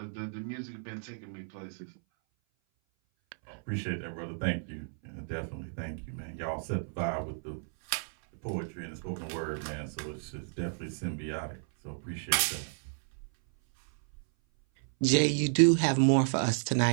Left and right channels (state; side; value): silent; left; 56 dB below the other